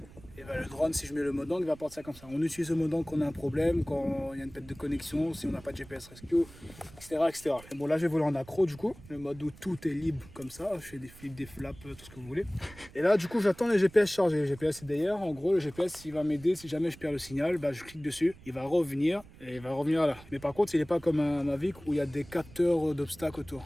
et ben le drone, si je mets le mode angle, il va partir comme ça. On utilise le mode angle quand on a un problème, quand il y a une perte de connexion, si on n'a pas de GPS rescue, etc. Et bon là je vais voler en accro du coup, le mode où tout est libre comme ça, je fais des flips, des flaps, tout ce que vous voulez. Et là du coup j'attends les GPS chargés, le GPS c'est derrière, en gros le GPS il va m'aider si jamais je perds le signal, je clique dessus, il va revenir et il va revenir là. Mais par contre il n'est pas comme un Mavic où il y a des capteurs d'obstacles autour.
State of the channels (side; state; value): right; noise; rumble, 20 dB below the sound